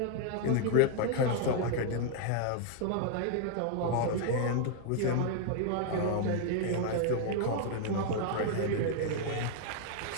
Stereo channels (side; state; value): both; different; correlation 0.00